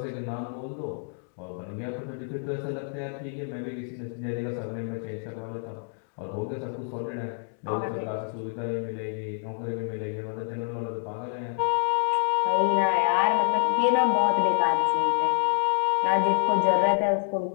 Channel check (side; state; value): right; silent; digital silence